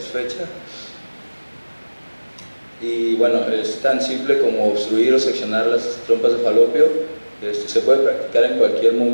Y bueno, es tan simple como obstruir o seccionar las trompas de falopio. Se puede practicar en cualquier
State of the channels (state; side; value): inverted; both; correlation -1.00